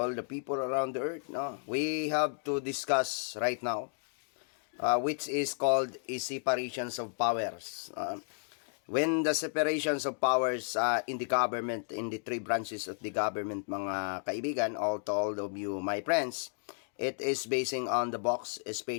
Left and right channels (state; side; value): silent; right; 56 dB below the other